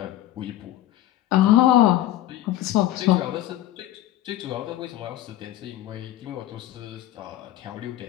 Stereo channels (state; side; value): quieter; right; 13.7 dB